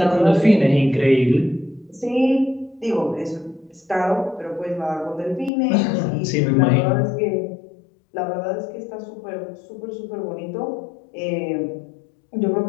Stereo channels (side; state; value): right; drops out; at 5.5 s